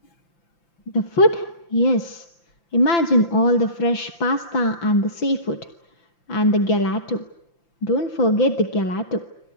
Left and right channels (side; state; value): right; late; 5.9 ms